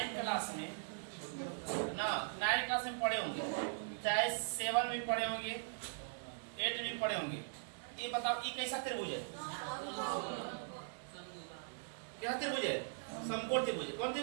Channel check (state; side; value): silent; left; digital silence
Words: क्लास में ना, 9th क्लास में पढ़े होंगे, चाहे 7 में पढ़े होंगे, 8 में पढ़े होंगे। ये बताओ ये कैसा त्रिभुज है? क्या त्रिभुज है? समकोण त्रिभुज। कौन